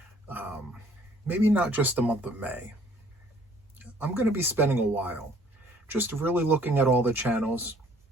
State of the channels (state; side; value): normal; both; correlation 0.58